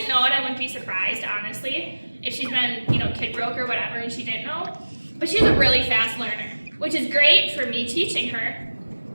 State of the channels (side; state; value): both; inverted; correlation -1.00